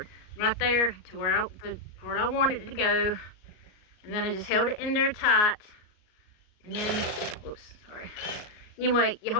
Right there to where the part I wanted it to go. And then I just held it in there tight. And then, whoops, sorry. Anyway, you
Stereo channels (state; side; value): late; right; 38 ms